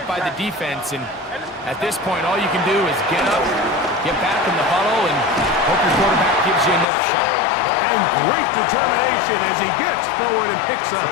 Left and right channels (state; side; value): drops out; right; at 6.9 s